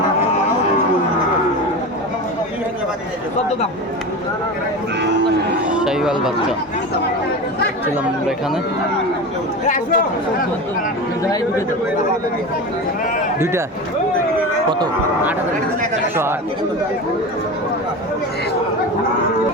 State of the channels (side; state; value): both; normal; correlation 0.27